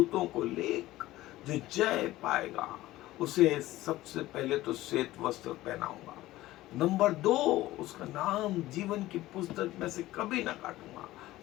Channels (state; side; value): quieter; right; 16.6 dB